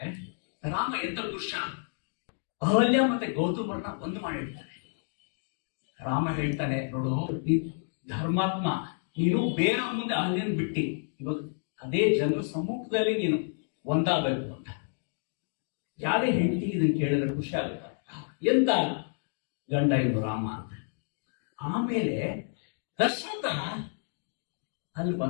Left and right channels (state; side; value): silent; right; digital silence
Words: ರಾಮ ಎಂತ ಪುರುಷ, ಅಹಲ್ಯ ಮತ್ತೆ ಗೌತಮರನ್ನ ಒಂದು ಮಾಡಿರ್ತಾನೆ. ರಾಮ ಹೇಳ್ತಾನೆ, ನೋಡು ನೀನು ಧರ್ಮಾತ್ಮ, ನೀನು ಬೇರೆ ಮುಂದೆ ಅಹಲ್ಯನ್ ಬಿಟ್ಟಿ ಇವಾಗ ಅದೇ ಜನರ ಸಮ್ಮುಖದಲ್ಲಿ ನೀನು ಒಂದಾಗಬೇಕು ಅಂತ. ಯಾವ್ದೇ ಹೆಂಡತಿ ಇದನ್ನು ಕೇಳಿದ್ರೆ ಖುಷಿ ಆಗುತ್ತೆ, ಎಂತ ಗಂಡ ಇದು ರಾಮ ಅಂತ. ಆಮೇಲೆ ದಶರಥ ಅಲ್ಲಿ